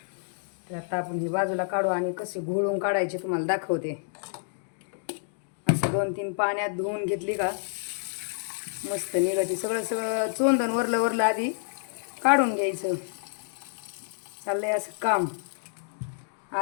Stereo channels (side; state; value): right; silent; digital silence